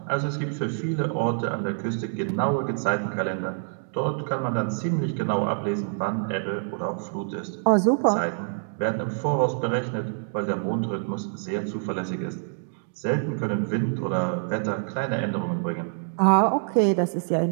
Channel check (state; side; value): silent; left; digital silence